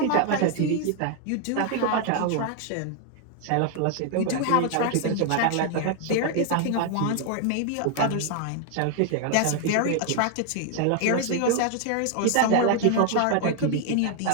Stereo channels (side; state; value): both; different; correlation 0.01